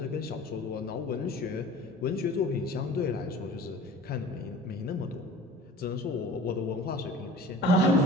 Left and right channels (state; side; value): normal; both; correlation 0.43